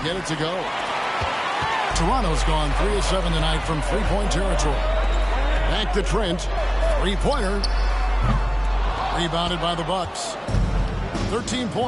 get it to go. Toronto's gone 3 of 7 tonight from three-point territory. Back to Trent. Three-pointer. Rebounded by the Bucks. 13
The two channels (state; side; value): identical; both; correlation 1.00